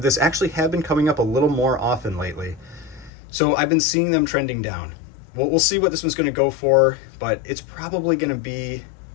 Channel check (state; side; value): drops out; right; at 3.1 s